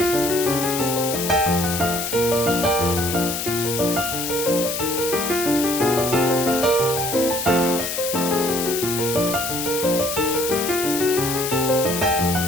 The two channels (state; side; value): noise; left; hiss, 3 dB below the sound